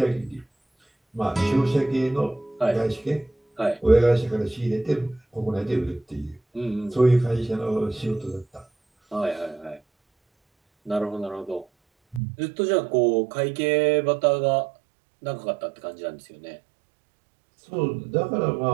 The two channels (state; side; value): drops out; left; at 12.2 s